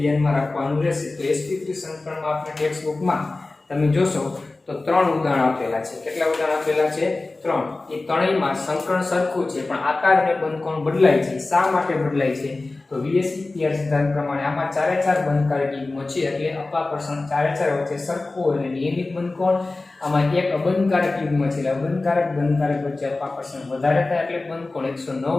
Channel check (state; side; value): quieter; right; 3.3 dB